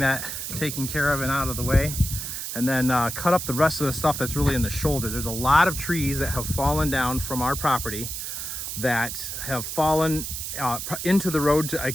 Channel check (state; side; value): noise; right; hiss, 5 dB below the sound